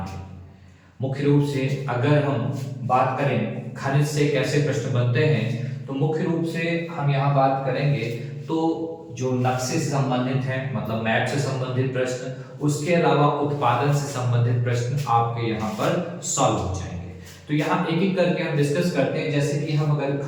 है। मुख्य रूप से अगर हम बात करें खनिज से कैसे प्रश्न बनते हैं तो मुख्य रूप से हम यहाँ बात करेंगे तो जो नक्शे से संबंधित हैं, मतलब मैप से संबंधित प्रश्न, उसके अलावा उत्पादन से संबंधित प्रश्न आपके यहाँ पर सॉल्व हो जाएंगे। तो यहाँ एक एक करके हम डिस्कस करते हैं। जैसे कि हम अगर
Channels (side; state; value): both; identical; correlation 1.00